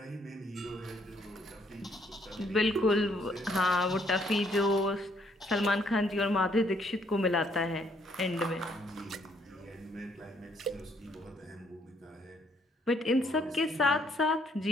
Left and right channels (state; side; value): normal; both; correlation 0.68